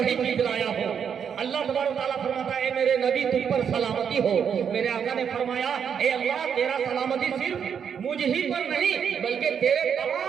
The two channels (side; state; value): left; quieter; 7.5 dB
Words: چیز لایا ہوں۔ اللہ تبارک تعالیٰ فرماتا ہے، اے میرے نبی تم پر سلامتی ہو۔ میرے آقا نے فرمایا، اے اللہ، تیرا سلامتی صرف مجھ ہی پر نہیں بلکہ تیرے